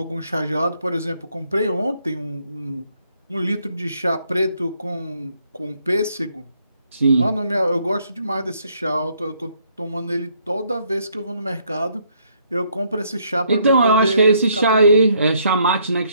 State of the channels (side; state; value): both; inverted; correlation -0.69